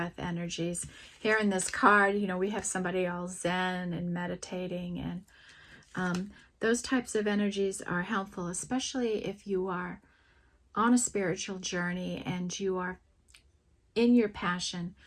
energies. Here in this card, you know, we have somebody all zen and meditating, and those types of energies are helpful, especially if you are on a spiritual journey and you are in your passion,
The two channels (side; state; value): both; identical; correlation 1.00